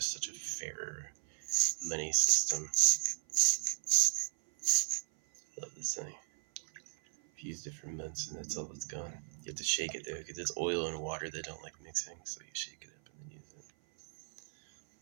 such a fairer money system. I love this thing. I've used it for months, and that's all it's gone. You have to shake it though, because it's oil and water that don't like mixing. So you shake it up and then use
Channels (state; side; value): silent; left; 54 dB below the other